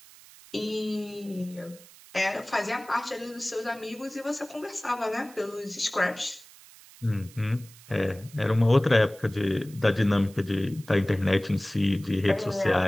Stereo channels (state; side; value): noise; right; hiss, 22 dB below the sound